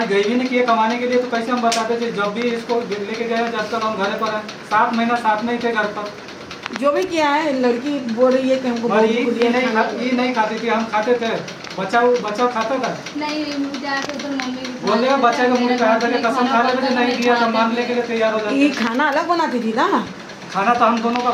गई भी नहीं किए कमाने के लिए, तो कैसे हम बताते थे। जब भी इसको लेके गए जब तक हम घर पर है, 7 महीना साथ में ही थे घर पर। जो भी किया है, लड़की बोल रही है कि हमको ये नहीं खाती थी, हम खाते थे। बच्चा खाता था नहीं, जाके उधर मम्मी बोल रहे बच्चा का मुंह कहा था कि कसम खा लेते, नहीं दिया तो मानने के लिए तैयार हो जाते। ये खाना अलग बनाती थी ना? खाना तो हम दोनों का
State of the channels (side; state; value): both; identical; correlation 1.00